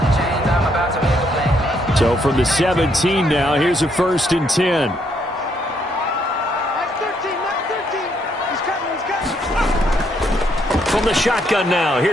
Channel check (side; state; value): both; normal; correlation 0.72